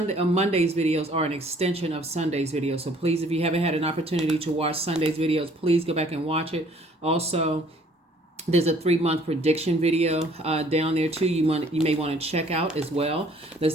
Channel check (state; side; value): normal; both; correlation 0.58